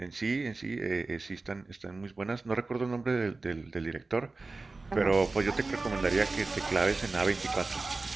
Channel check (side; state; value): left; quieter; 3.6 dB